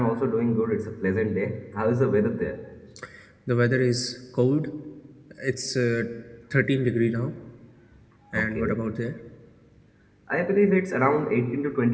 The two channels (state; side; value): identical; both; correlation 1.00